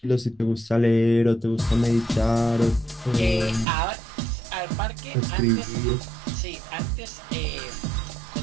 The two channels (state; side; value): drops out; left; at 3.7 s